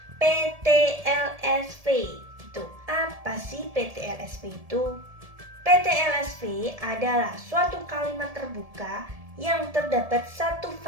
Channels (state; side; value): late; left; 1.7 ms